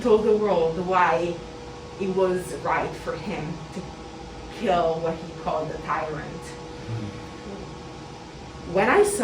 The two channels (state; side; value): identical; both; correlation 1.00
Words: told the world why it was right for him to kill what he called a tyrant. When I